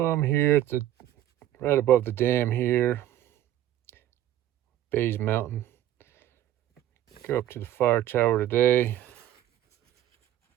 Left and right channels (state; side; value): quieter; left; 12.5 dB